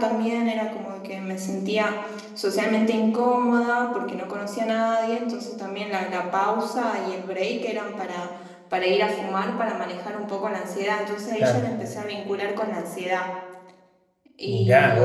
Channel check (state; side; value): identical; both; correlation 1.00